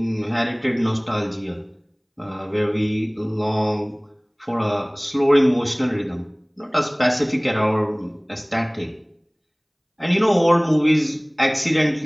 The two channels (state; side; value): identical; both; correlation 1.00